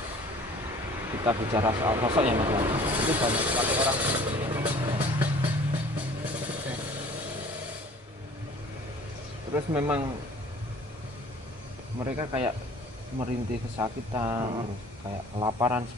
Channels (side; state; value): both; normal; correlation 0.49